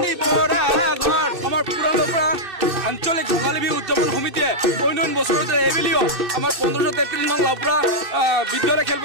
পৰা ঘৰ আমাৰ পুৰণা আঞ্চলিক ৰঙালী বিহু উদযাপন সমিতিয়ে অন্য বছৰতে এইবেলিও আমাৰ 1533 নং লাউপুৰা বিদ্যালয়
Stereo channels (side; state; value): left; late; 2.6 ms